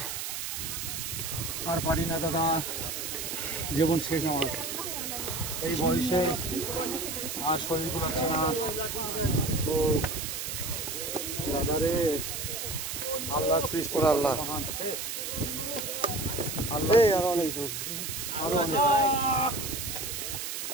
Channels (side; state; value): right; noise; hiss, 4 dB below the sound